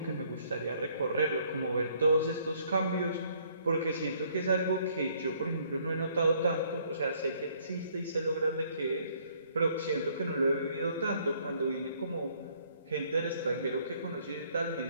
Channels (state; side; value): inverted; both; correlation -0.64